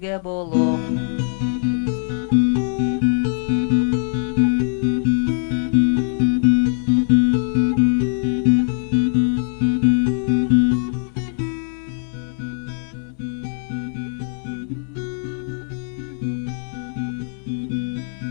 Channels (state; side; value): silent; right; 62 dB below the other